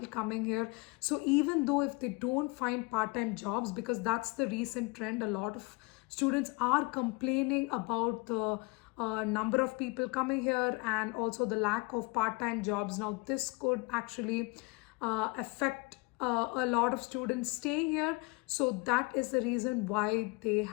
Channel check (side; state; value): right; quieter; 27.6 dB